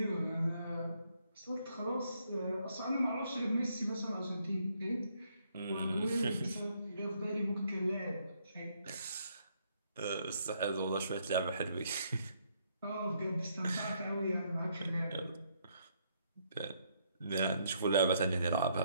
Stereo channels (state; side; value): inverted; both; correlation -0.71